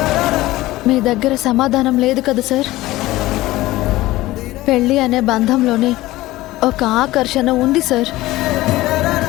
మీ దగ్గర సమాధానం లేదు కదా సార్. పెళ్లి అనే బంధంలోనే ఒక ఆకర్షణ ఉంది సార్.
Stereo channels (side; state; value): right; quieter; 17.6 dB